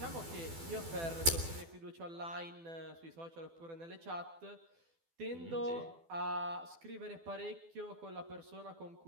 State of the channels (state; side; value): late; left; 12 ms